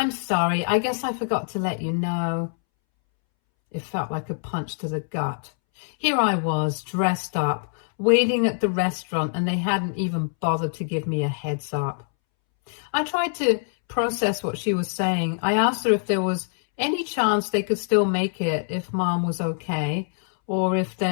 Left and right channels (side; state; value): right; silent; 62 dB below the other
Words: sorry, I guess I forgot to let you know." It felt like a punch to the gut. Here I was, dressed up, waiting at the restaurant, and they hadn't even bothered to give me a heads up. I tried to process what she was saying. I asked her if there was any chance they could still make it if Mom was okay, or if